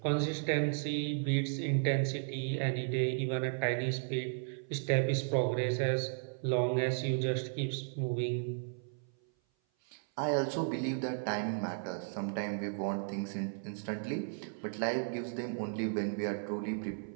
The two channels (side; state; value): left; silent; 55 dB below the other